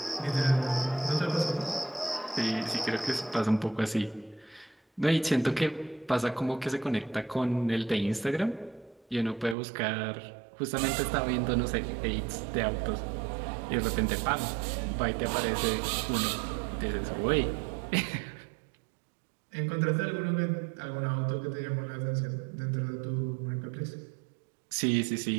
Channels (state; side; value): drops out; left; at 9.6 s